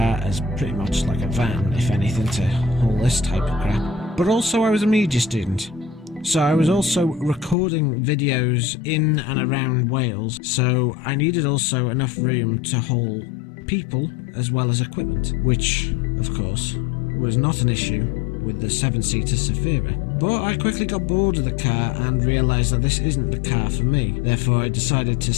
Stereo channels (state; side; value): drops out; right; at 7.6 s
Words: as pretty much like a van, if anything, to haul this type of crap. But also I was a media student, so I was also recording videos in and around Wales, so I needed also enough room to haul people as well as equipment, which of course was not an issue with the 7-seater ZAFIRA. But I quickly got bored of the car and realised that this isn't the car for me. Therefore I decided to